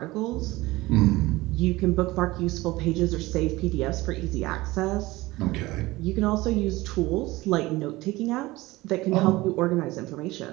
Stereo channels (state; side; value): quieter; left; 19.7 dB